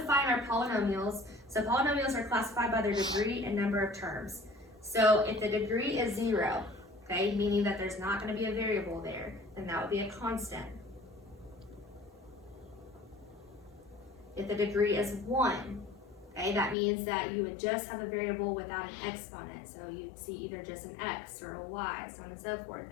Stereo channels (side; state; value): right; drops out; at 16.8 s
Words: our polynomials. So polynomials are classified by their degree and number of terms. So if the degree is 0, okay, meaning that there's not going to be a variable there, then that would be a constant. If the degree is 1, okay, that means that you would just have a variable without an exponent. So you'd see either just an x or a y, so on and so forth.